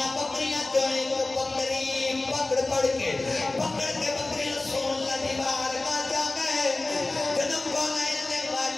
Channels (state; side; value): quieter; right; 3.1 dB